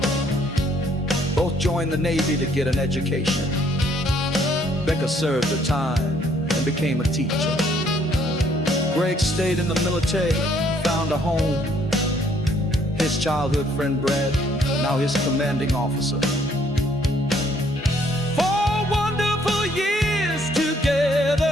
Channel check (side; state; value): both; normal; correlation 0.65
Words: Both joined the Navy to get an education. Becca served her time and became a teacher. Greg stayed in the military, found a home. His childhood friend Brad, now his commanding officer. 4 wonderful years